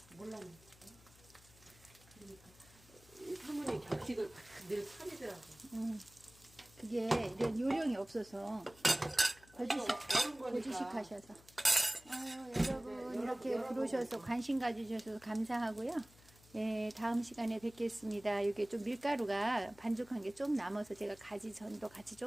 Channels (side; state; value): left; noise; hum, 25 dB below the sound